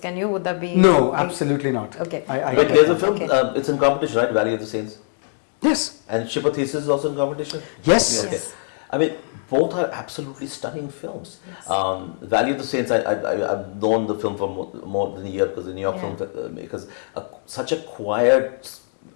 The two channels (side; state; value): right; silent; 61 dB below the other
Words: you? Would that be? No, absolutely not. Okay. But there's a film. It's in competition, right? Valley of the Saints. Yes. And Ship of Theseus is also in competition? Yes. Both are absolutely stunning films. Valley of the Saints, I've known the film for more than a year because the New York filmmakers, such a quiet,